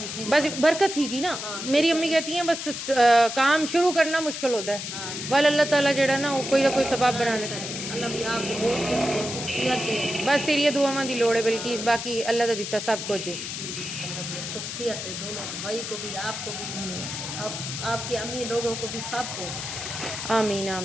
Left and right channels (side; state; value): left; noise; hiss, 6 dB below the sound